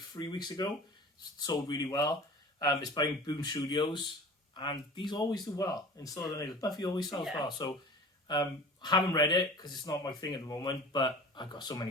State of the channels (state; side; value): normal; both; correlation 0.40